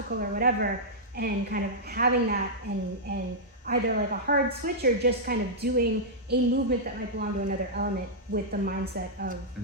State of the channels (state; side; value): normal; both; correlation -0.09